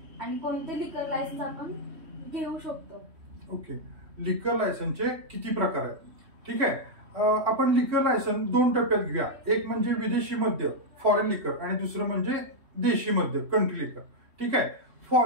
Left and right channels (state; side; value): late; left; 3.1 ms